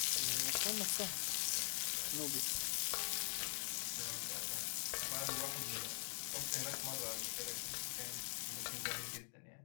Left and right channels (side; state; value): right; silent; digital silence